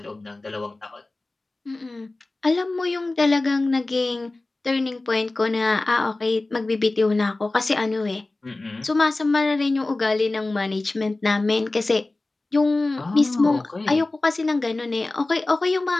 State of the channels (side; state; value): right; quieter; 3.0 dB